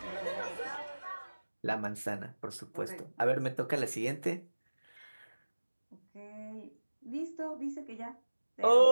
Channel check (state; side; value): inverted; both; correlation -1.00